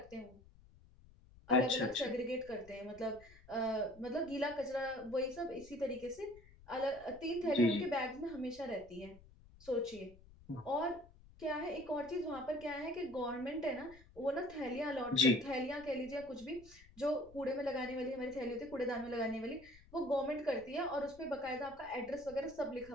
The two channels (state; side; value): noise; left; rumble, 22 dB below the sound